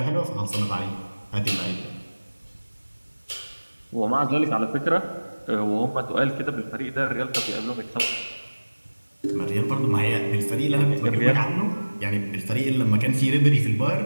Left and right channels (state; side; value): inverted; both; correlation -1.00